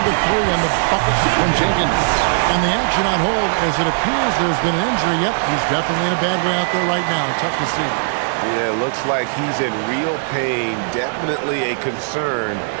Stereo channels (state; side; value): silent; left; digital silence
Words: to 3 on the bucket from Jenkins. And the action on hold, as it appears there's been an injury. Yep, he's definitely in a bad way out there right now. Tough to see. Yeah, looks like he's in real pain. Definitely a concern